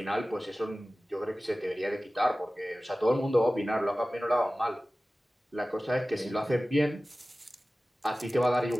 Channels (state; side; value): normal; both; correlation 0.97